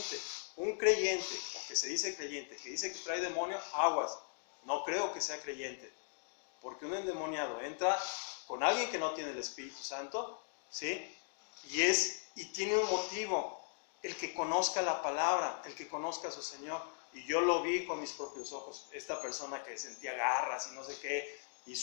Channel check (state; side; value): silent; right; digital silence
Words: Un creyente, o que se dice creyente, que dice que trae demonio, aguas. No creo que sea creyente, porque un endemoniado entra con alguien que no tiene el Espíritu Santo, ¿sí? Y tiene un motivo. El que conozca la palabra, el que conozca a su Señor. Y yo lo vi con mis propios ojos. Esta persona que sentía garras y no sé qué, y